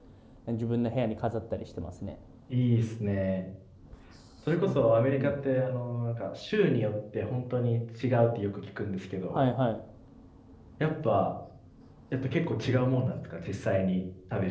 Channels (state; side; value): identical; both; correlation 1.00